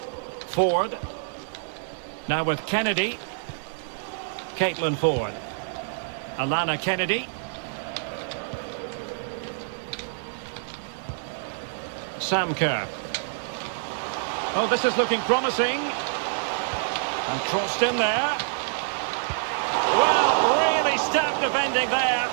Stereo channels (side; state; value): left; silent; 61 dB below the other